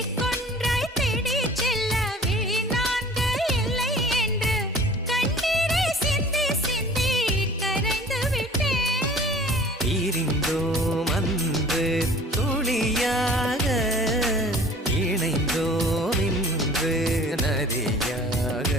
தேடி செல்ல விழி நான்கு இல்லை என்று கண்ணீரை சிந்தி சிந்தி கரைந்து விட்டேன். பிரிந்தோம் அன்று துளியாக, இணைந்தோம் இன்று நதியாக.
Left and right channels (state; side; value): normal; both; correlation 0.47